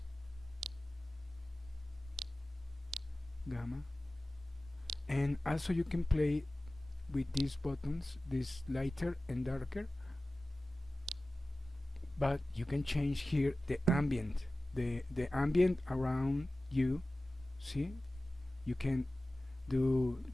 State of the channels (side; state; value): both; normal; correlation 0.96